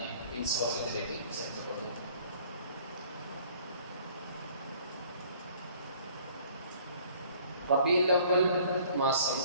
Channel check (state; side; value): inverted; both; correlation -0.55